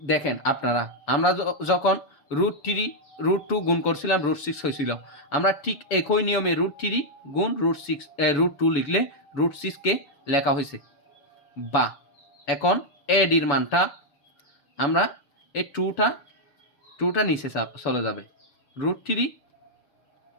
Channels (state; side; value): late; right; 7.0 ms